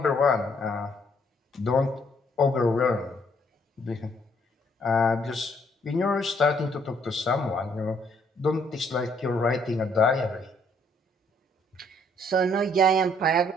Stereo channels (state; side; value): normal; both; correlation 0.67